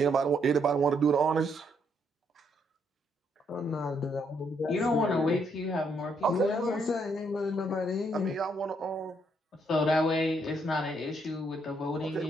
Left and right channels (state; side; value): normal; both; correlation 0.73